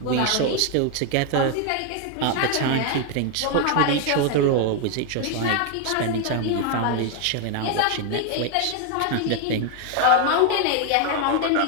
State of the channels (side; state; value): both; different; correlation 0.01